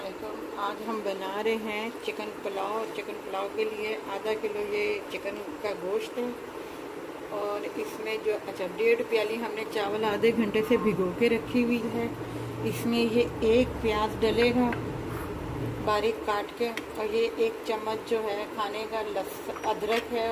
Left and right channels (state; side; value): identical; both; correlation 1.00